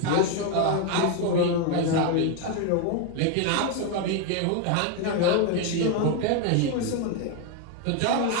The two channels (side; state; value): both; different; correlation 0.01